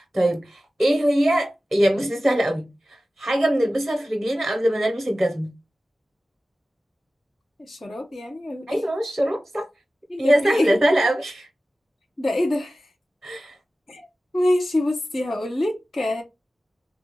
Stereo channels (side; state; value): both; normal; correlation 0.96